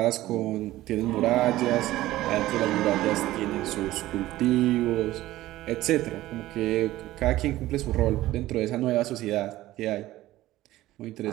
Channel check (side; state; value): left; quieter; 15.9 dB